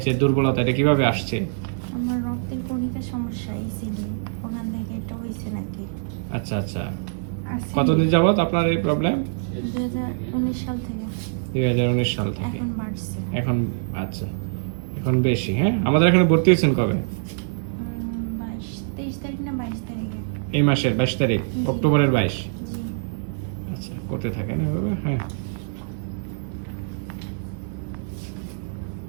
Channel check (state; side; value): silent; left; digital silence